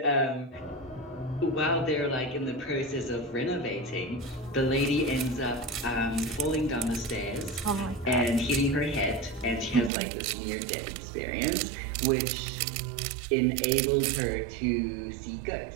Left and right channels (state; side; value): drops out; left; at 9.9 s